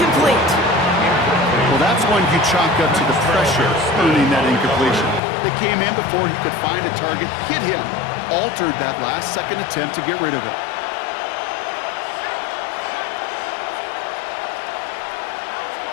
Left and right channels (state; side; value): drops out; right; at 5.2 s